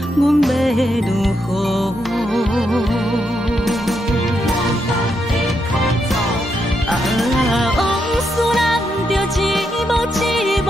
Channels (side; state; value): both; normal; correlation 0.81